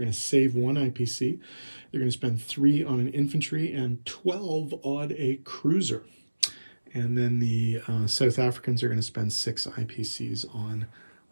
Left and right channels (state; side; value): inverted; both; correlation -1.00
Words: to save 1 IPC. They're going to spend 3 on an infantry and 12 on a cruiser. And then the South Africans are going to spend 6 IPCs on